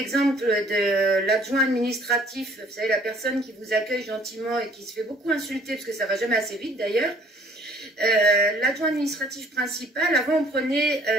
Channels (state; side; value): normal; both; correlation 0.56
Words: de l'adjoint administratif, vous savez, la personne qui vous accueille gentiment et qui se fait beaucoup insulter, parce que ça va jamais assez vite d'ailleurs. L'adjoint administratif principal, avant on prenait